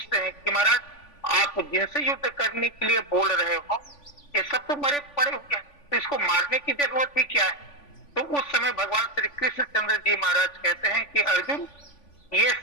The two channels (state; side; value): late; right; 3.5 ms